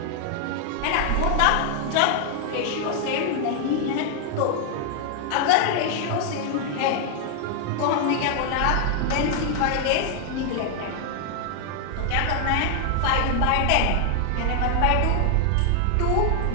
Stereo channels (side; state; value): both; different; correlation 0.00